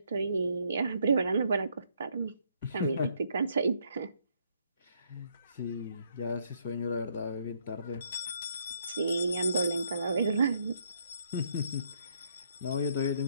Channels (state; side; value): inverted; both; correlation -0.71